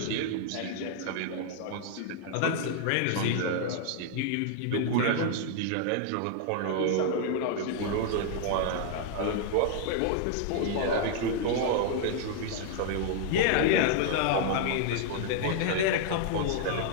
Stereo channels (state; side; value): different; both; correlation -0.01